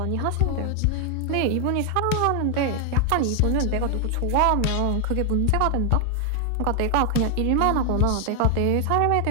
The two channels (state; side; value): different; both; correlation 0.00